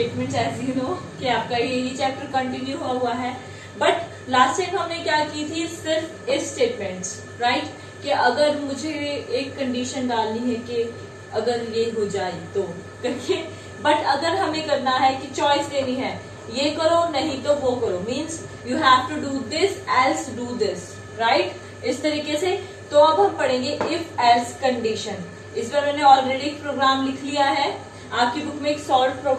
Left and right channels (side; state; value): both; identical; correlation 1.00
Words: As you know कि आपका यही चैप्टर कंटिन्यू हुआ है, बट लास्ट टाइम हमने क्या की थी, सिर्फ इफ स्टेटमेंट्स, राइट? कि अगर मुझे एक कंडीशन डालनी है कि अगर ये हो जाए तो करके, बट अगर हमें करना है कि चॉइस देनी है, ये करो नहीं तो वो करो, means you have to do this else do this, right? इस तरीके से। तो अब हम पढ़ेंगे इफ एल्स कंडीशन। इस बार मैंने ऑलरेडी एक प्रोग्राम लिख लिया है, आपकी बुक में एक सॉल्व